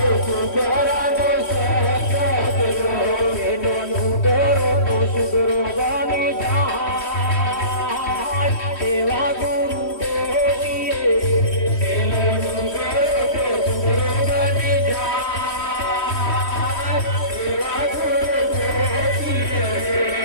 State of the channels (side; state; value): right; late; 3.1 ms